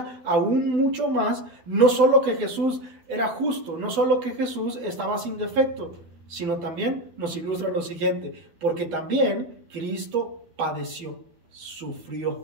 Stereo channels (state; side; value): late; left; 12 ms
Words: aún mucho más, no solo que Jesús era justo, no solo que Jesús estaba sin defecto, sino también nos ilustra lo siguiente, porque también Cristo padeció,